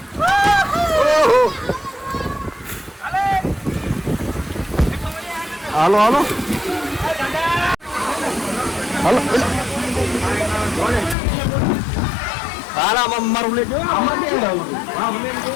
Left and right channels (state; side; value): drops out; right; at 11.2 s